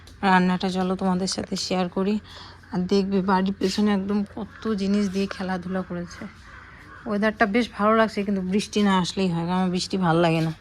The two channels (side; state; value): both; identical; correlation 1.00